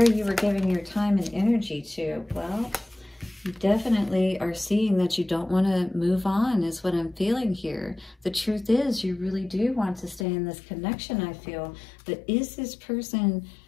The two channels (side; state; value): right; drops out; at 10.2 s